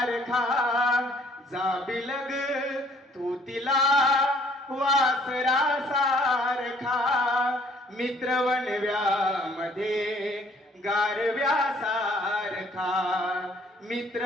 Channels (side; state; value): both; normal; correlation 0.59